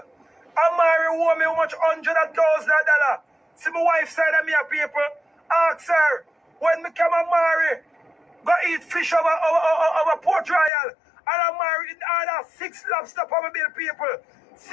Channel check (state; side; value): drops out; right; at 10.7 s